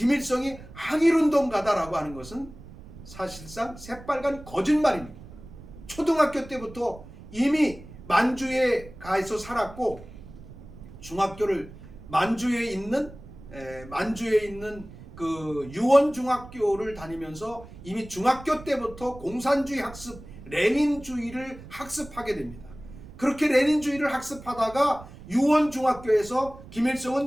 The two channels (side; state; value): right; noise; rumble, 17 dB below the sound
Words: 항일운동가다라고 하는 것은 사실상 새빨간 거짓말입니다. 초등학교 때부터 이미 만주에 가서 살았고 중학교를 만주에 있는 그 유원중학교를 다니면서 이미 중학교 때부터 공산주의 학습, 레닌주의를 학습하게 됩니다. 그렇게 레닌주의를 학습하다가 유원중학교에서